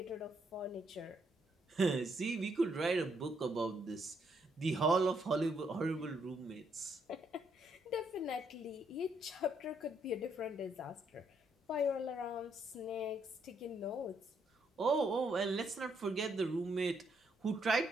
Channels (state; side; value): normal; both; correlation 0.73